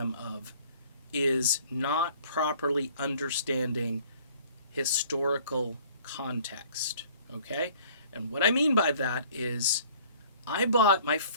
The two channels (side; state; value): both; inverted; correlation -0.53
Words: of is not properly understanding historical context, okay? And what I mean by that is I bought my